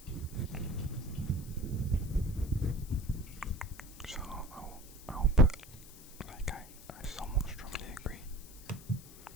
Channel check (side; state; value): left; noise; hiss, 18 dB below the sound